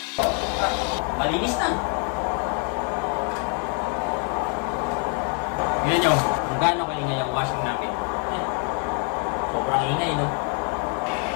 Malinis na! Yun nyo, kung gaano kaingay ang washing namin. Sobrang ingay, no?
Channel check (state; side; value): quieter; right; 39.9 dB